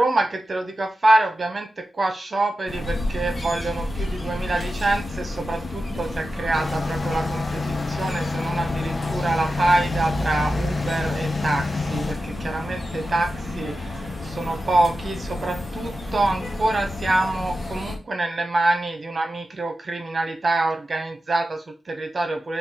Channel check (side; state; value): both; normal; correlation 0.92